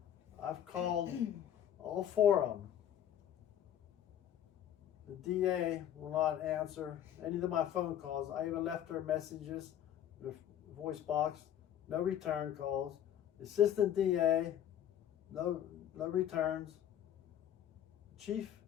I've called all 4 of them. The DA will not answer any of my phone calls. I even left her messages, the voice box, no return calls. The assistant DA, no returns. Chief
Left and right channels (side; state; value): right; quieter; 10.6 dB